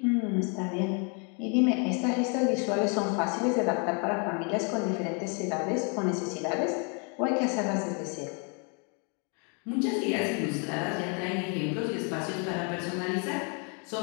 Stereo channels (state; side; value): quieter; right; 36.3 dB